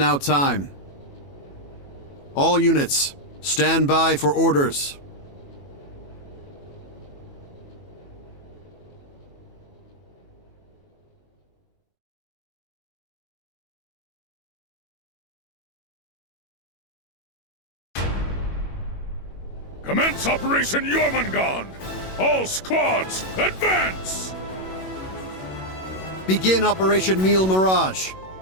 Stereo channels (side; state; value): right; late; 21 ms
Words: time. All units, stand by for orders. Commence Operation Jormungand! All squads, advance! Begin Operation Meal Mirage.